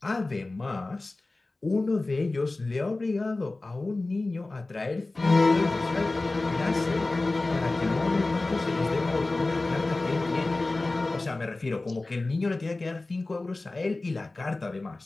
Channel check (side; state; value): right; quieter; 3.1 dB